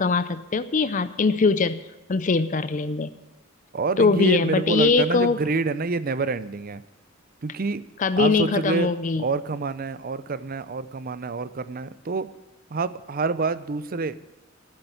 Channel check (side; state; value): both; normal; correlation 0.26